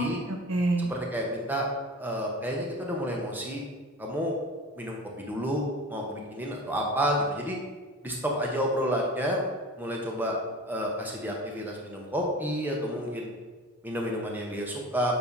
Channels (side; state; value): both; normal; correlation 0.36